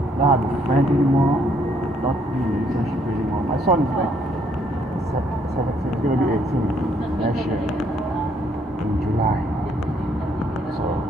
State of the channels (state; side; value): normal; both; correlation 0.68